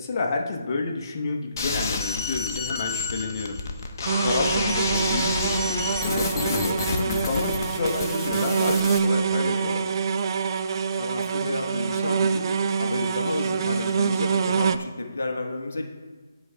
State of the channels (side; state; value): both; inverted; correlation -0.71